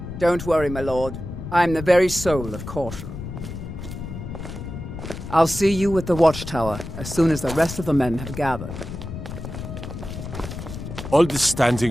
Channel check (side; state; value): left; noise; rumble, 9 dB below the sound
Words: Don't worry, my lord. I'm the very soul of caution. I'll see you at the Watchtower as soon as the rest of the men have gathered. All this